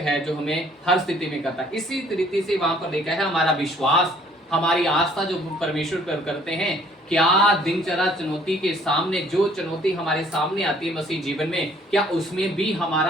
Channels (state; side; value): normal; both; correlation 0.59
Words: जो हमें हर स्थिति में करता है। इसी तरीके से वहां पर लिखा है हमारा विश्वास, हमारी आस्था जो परमेश्वर पर करते हैं। क्या दिनचर्या चुनौती के सामने, जो चुनौती हमारे सामने आती है मसीह जीवन में, क्या उसमें भी